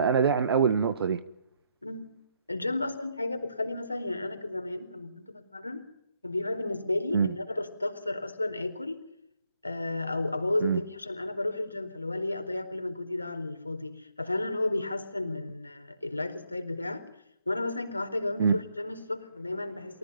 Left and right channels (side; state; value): both; inverted; correlation -0.75